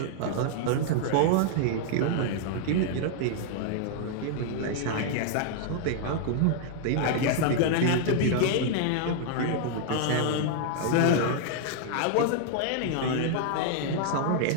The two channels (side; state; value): both; different; correlation -0.01